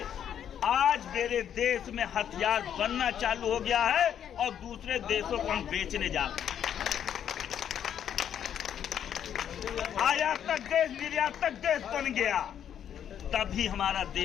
आज मेरे देश में हथियार बनना चालू हो गया है और दूसरे देशों को हम बेचने जा रहे हैं। आयातक देश निर्यातक देश बन गया, तभी हमारा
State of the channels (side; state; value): right; quieter; 9.3 dB